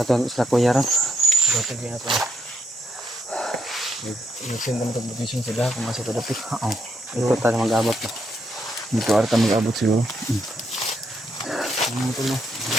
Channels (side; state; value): both; normal; correlation 0.78